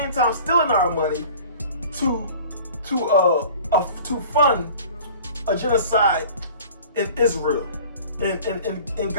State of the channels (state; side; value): inverted; both; correlation -0.45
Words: time stealing our money to fund a genocide in Israel, in